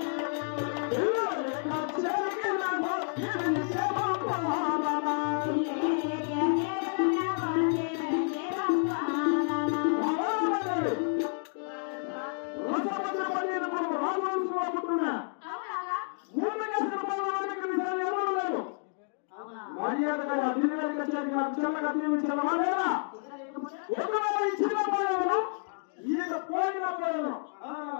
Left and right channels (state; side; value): silent; right; 58 dB below the other